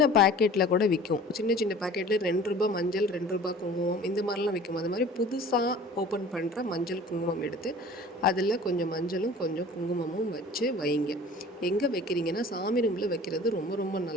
பேக்கெட்டில் கூட விற்கும். சின்ன சின்ன பேக்கெட்டில் ₹2 மஞ்சள், ₹2 குங்குமம், இந்த மாதிரிலாம் விற்கும். அது மாதிரி புதுசாக ஓப்பன் பண்ணுற மஞ்சள் குங்குமம் எடுத்து அதில் கொஞ்சம் மஞ்சளும் கொஞ்சம் குங்குமமும் வச்சு வைங்க. எங்கே வைக்கிறீங்கன்னா, சாமி ரூமில் வைக்கிறது ரொம்ப ரொம்ப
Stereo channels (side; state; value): both; normal; correlation 0.45